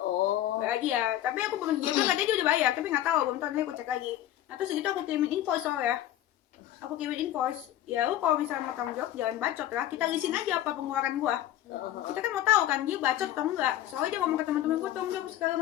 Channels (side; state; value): right; quieter; 12.8 dB